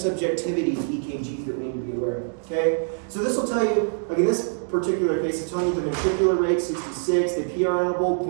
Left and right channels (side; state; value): left; silent; digital silence